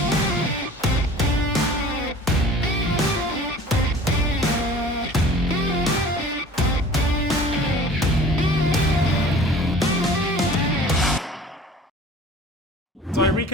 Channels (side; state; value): both; normal; correlation 0.46